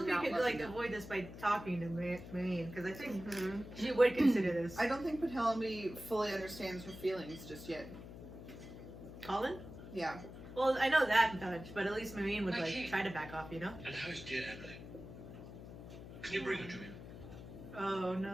not could love like you? avoid this by talking to Marine, because I think Mhm. she would consider this. I don't think Penelope fully understands her feelings just yet. Colin? Yeah. Well, I know that much, but at least Marine would Okay. like try to back off, you know? And how is dear Emily? Can you bring her to me? Oh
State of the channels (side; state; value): left; noise; hum, 13 dB below the sound